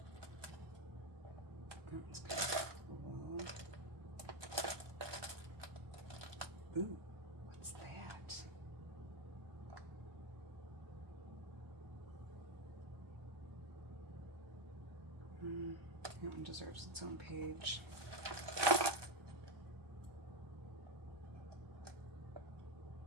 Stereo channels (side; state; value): left; late; 1.2 ms